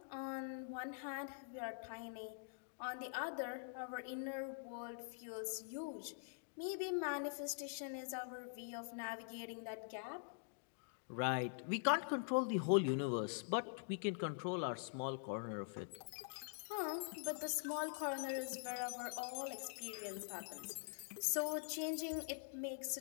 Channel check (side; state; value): right; silent; digital silence